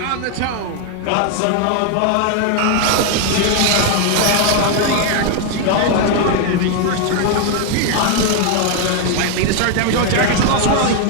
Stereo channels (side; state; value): both; different; correlation 0.01